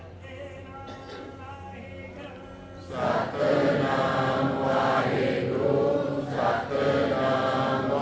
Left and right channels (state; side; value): identical; both; correlation 1.00